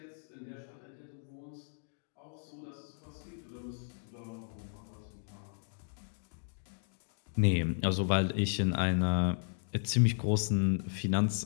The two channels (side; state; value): right; silent; digital silence